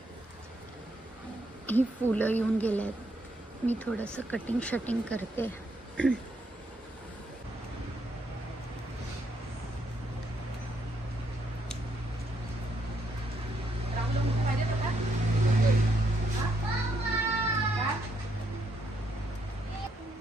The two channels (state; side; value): normal; both; correlation 0.75